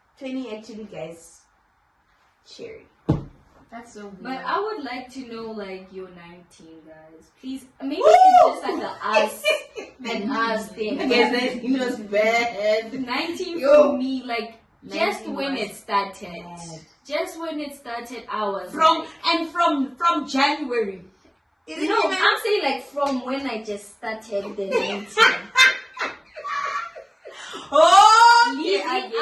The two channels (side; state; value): both; identical; correlation 1.00